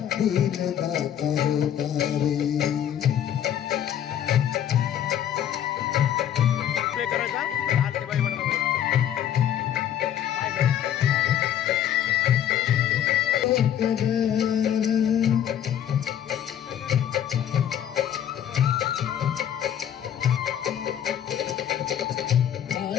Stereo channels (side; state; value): right; quieter; 10.2 dB